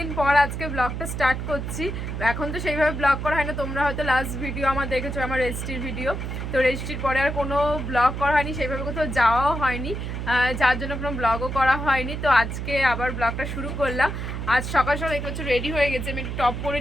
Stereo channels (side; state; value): right; noise; hum, 5 dB below the sound